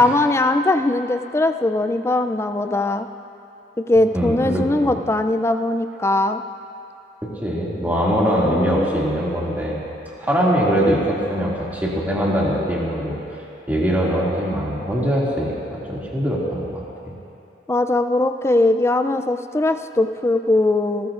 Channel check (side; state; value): both; normal; correlation 0.72